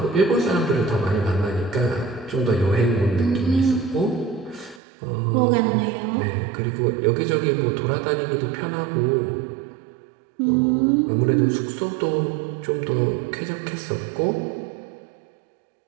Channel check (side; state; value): left; drops out; at 4.8 s